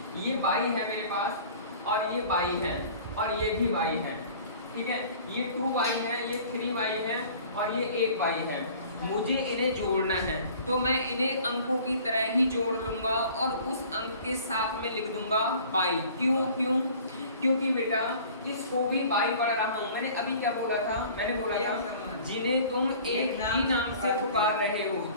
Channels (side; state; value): both; inverted; correlation -0.48